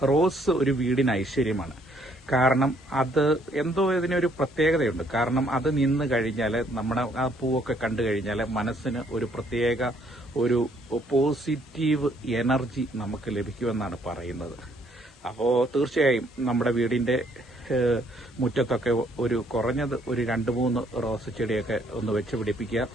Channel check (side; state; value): both; normal; correlation 0.66